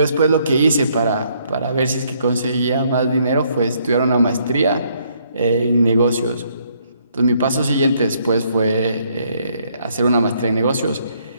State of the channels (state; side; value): inverted; both; correlation -0.69